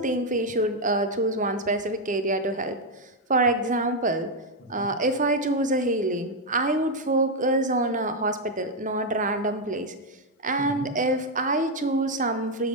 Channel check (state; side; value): normal; both; correlation 0.02